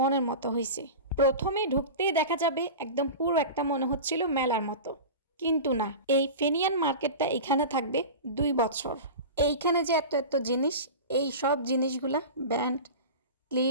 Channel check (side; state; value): both; inverted; correlation -0.30